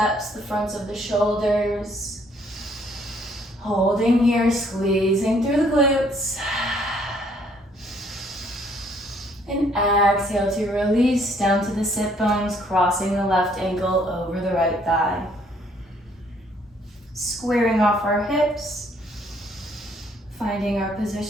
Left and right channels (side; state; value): both; normal; correlation 0.65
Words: the fronts of the shoulders. Holding here, squeezing through the glutes. And exhale to release down to the sit bones, crossing the left ankle over the right thigh. Squaring off our hips. Finding our